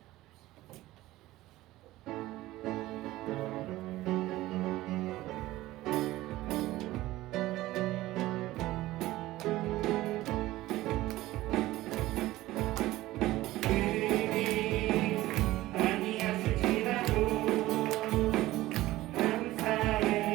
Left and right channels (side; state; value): left; quieter; 16.9 dB